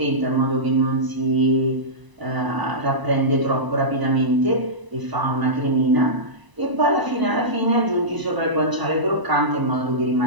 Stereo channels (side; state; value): left; late; 1.0 ms